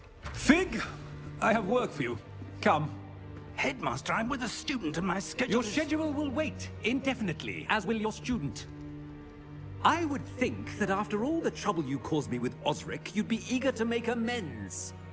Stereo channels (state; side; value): identical; both; correlation 1.00